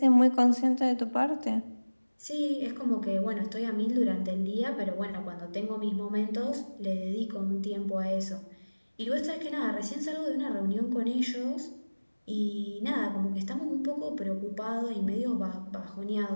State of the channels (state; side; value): inverted; both; correlation -1.00